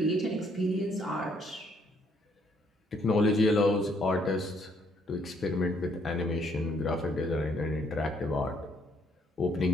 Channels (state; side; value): normal; both; correlation 0.68